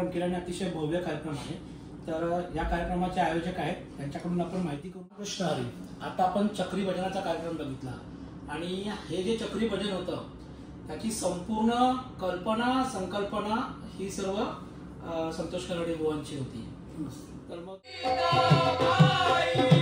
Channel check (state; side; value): identical; both; correlation 1.00